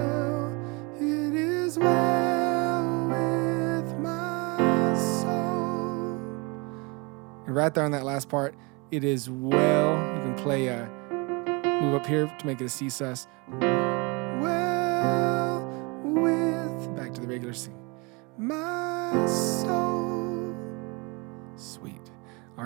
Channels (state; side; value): quieter; left; 28.6 dB